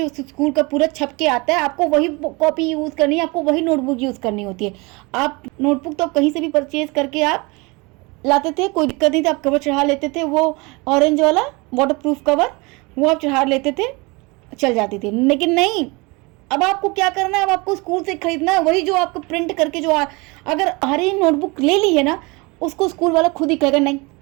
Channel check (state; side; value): quieter; left; 26.5 dB